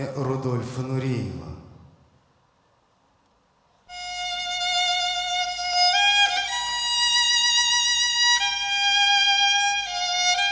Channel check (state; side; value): identical; both; correlation 1.00